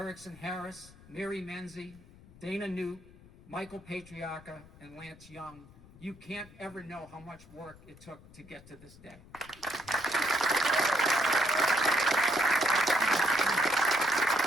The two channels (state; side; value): noise; left; rumble, 22 dB below the sound